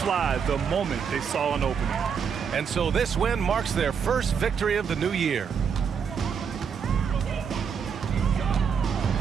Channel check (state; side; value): quieter; left; 6.7 dB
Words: the moment they saw an opening. And so this win marks their first victory of the new year.